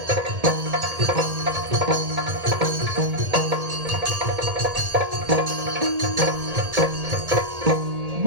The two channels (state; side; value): late; left; 1.8 ms